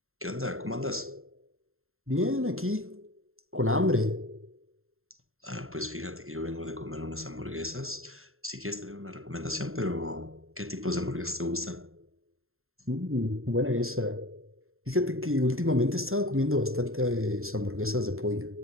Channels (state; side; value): late; left; 0.61 ms